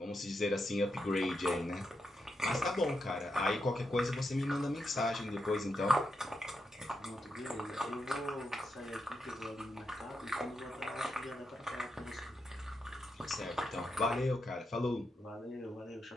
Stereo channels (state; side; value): normal; both; correlation 0.84